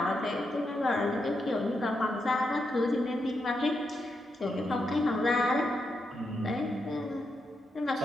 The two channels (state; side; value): normal; both; correlation 0.83